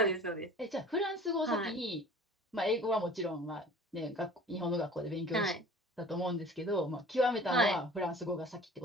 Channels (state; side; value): normal; both; correlation 0.45